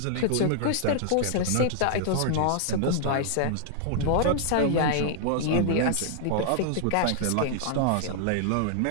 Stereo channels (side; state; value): both; different; correlation -0.01